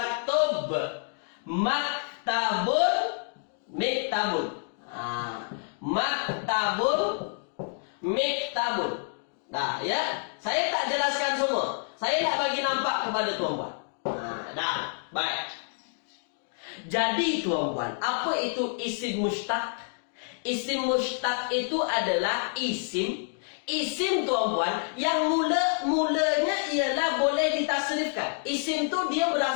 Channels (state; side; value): silent; right; 59 dB below the other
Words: maktabun miktabun. Maktabun miktabun. Dah, ya. Saya tak jelaskan semua. Saya nak bagi nampak kepada tuan-puan. Dah, baik. Jadi tuan-puan, apa itu isim mustaq? Isim mustaq itu adalah isim tuan-puan yang mulanya ialah boleh ditasrifkan. Isim tu dia